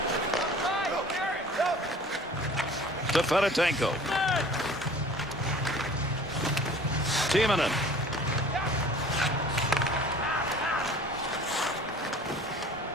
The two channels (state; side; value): normal; both; correlation 0.47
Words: To Fedotenko. Timonen.